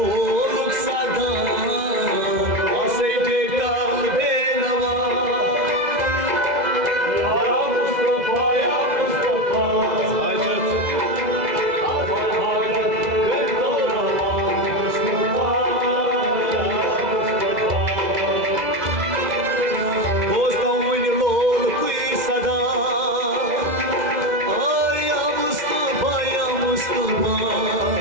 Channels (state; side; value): late; left; 2.0 ms